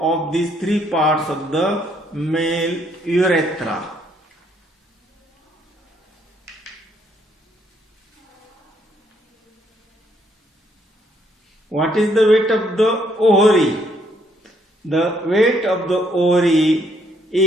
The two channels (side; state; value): both; normal; correlation 0.69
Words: of these three parts of the male urethra. What is the weight of the ovary? The weight of the ovary